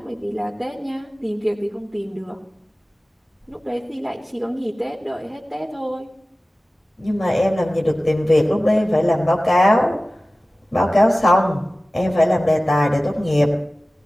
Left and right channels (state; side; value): normal; both; correlation 0.97